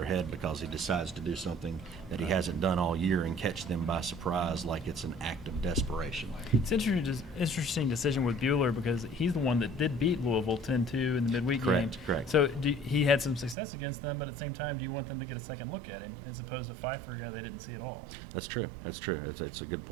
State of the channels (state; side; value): drops out; left; at 13.6 s